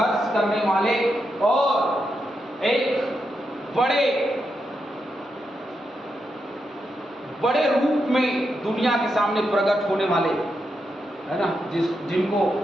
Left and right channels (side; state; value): both; normal; correlation 0.84